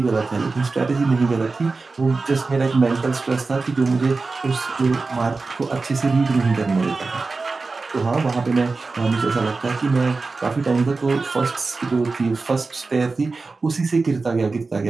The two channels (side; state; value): left; quieter; 3.9 dB